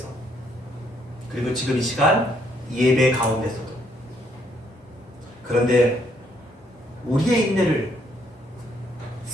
그리고 지금 이 시간 예배 가운데서도. 그런데 우리의 인내를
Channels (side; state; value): both; normal; correlation 0.70